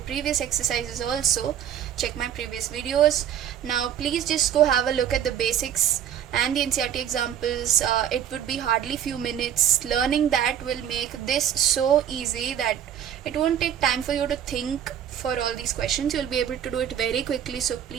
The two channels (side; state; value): left; quieter; 9.7 dB